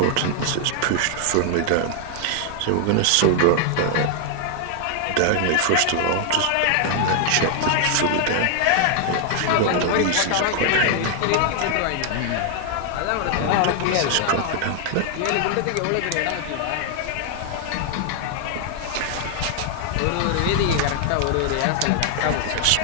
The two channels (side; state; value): both; different; correlation 0.00